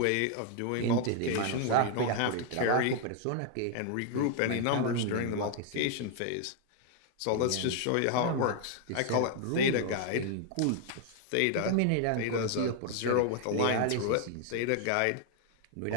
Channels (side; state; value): both; different; correlation 0.00